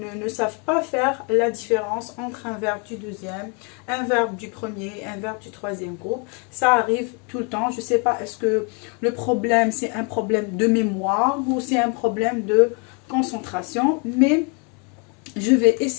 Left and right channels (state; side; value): quieter; right; 35.4 dB